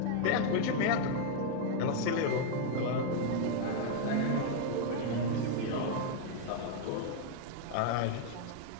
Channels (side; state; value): both; different; correlation 0.00